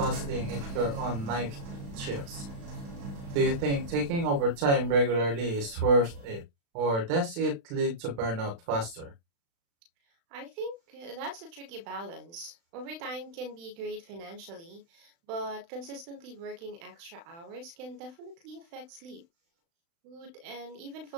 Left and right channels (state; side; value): late; left; 35 ms